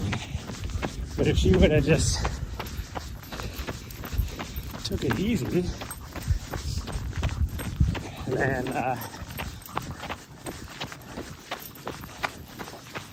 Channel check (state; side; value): identical; both; correlation 1.00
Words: But if she would have just took it easy, then